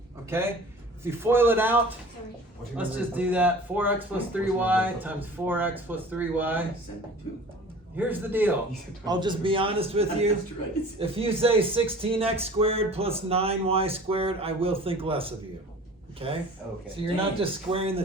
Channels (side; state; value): both; normal; correlation 0.44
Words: okay? If you foil it out, sorry. What's your let's number? just do that. 4x plus 3y times 4x plus 3y. 72. here's the deal. I'll just be honest with you. That's right. If you say 16x squared plus 9y squared, I will think less of you. Okay? Okay. So you're not just squaring the